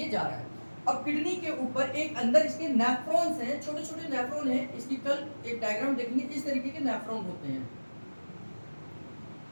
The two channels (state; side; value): inverted; both; correlation -1.00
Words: जा रहा है। अब किडनी के ऊपर एक अंदर इसके नेफ्रॉन्स हैं, छोटे छोटे नेफ्रॉन हैं। इसकी कल एक डायग्राम देखेंगे, इस तरीके के नेफ्रॉन होते हैं,